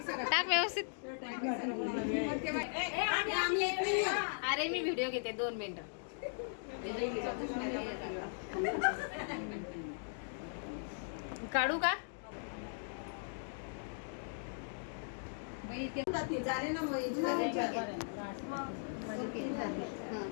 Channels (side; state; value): right; silent; digital silence